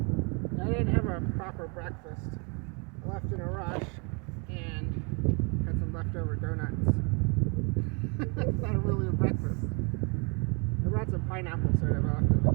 breakfast. I left in a rush and had some leftover donuts. It's not really a breakfast. I brought some pineapple syrup I left in the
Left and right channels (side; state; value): left; quieter; 33.7 dB